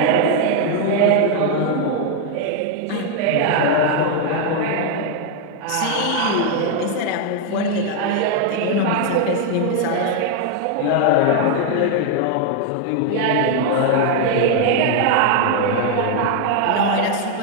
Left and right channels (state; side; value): different; both; correlation 0.00